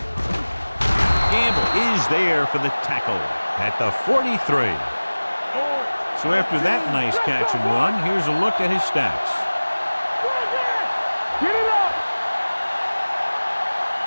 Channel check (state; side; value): inverted; both; correlation -1.00